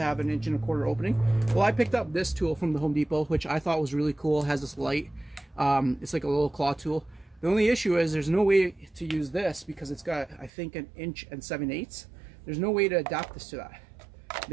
have an 1.25" opening. Well, I picked up this tool from the Home Depot, which I thought was really cool. It has this light. It's like a little claw tool. The only issue is there's no way to use this because it's got, I think, 1 7/8 inches. There's no way to adapt this to that.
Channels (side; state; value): left; drops out; at 10.5 s